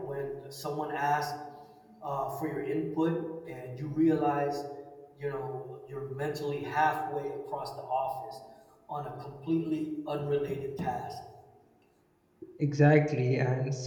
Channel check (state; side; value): identical; both; correlation 1.00